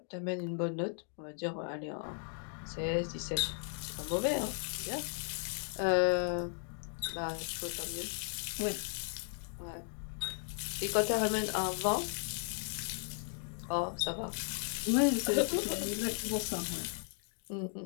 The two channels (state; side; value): silent; right; 54 dB below the other